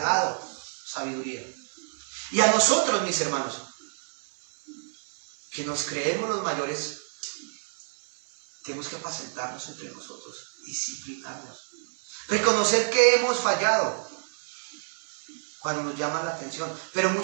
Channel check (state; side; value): silent; left; 59 dB below the other